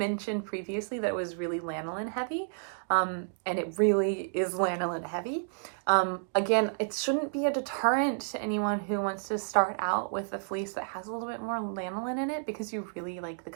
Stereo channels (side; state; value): left; silent; digital silence